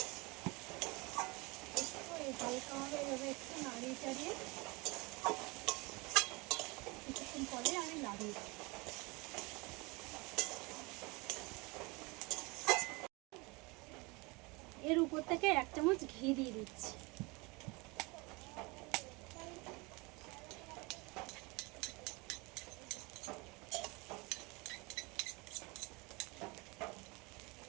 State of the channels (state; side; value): quieter; left; 26.4 dB